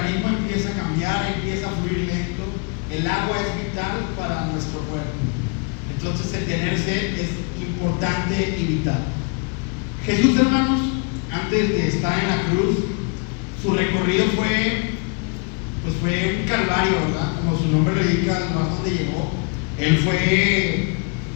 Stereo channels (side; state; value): right; quieter; 33.2 dB